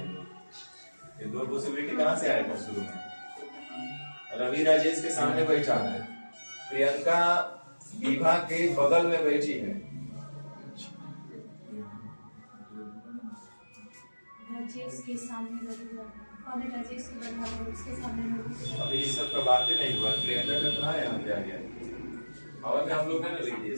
हम लोग। ये 2 पॉसिबिलिटी कहाँ से आया था शुरू में? रवि राजेश के सामने बैठा है, प्रियंका विभा के बगल में बैठी है। राजेश के सामने और राजेश के बराबर उसके सामने। अभी इस सब का बात ही नहीं हुआ। प्रियंका का कहाँ है, यहाँ पे आ गया। और में हम लोग है ना लिख दिए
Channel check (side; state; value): both; inverted; correlation -1.00